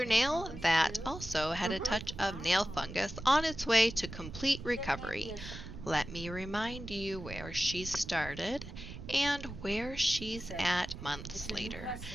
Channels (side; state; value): right; noise; rumble, 11 dB below the sound